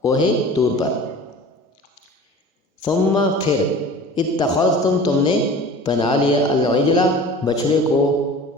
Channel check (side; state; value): both; normal; correlation 0.41